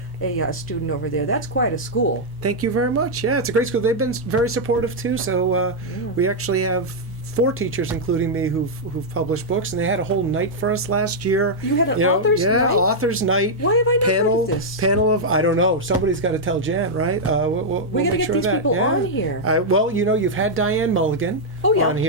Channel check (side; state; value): both; normal; correlation -0.04